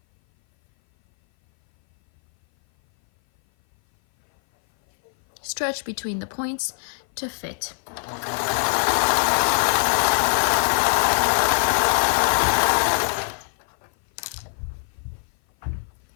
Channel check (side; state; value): right; silent; 57 dB below the other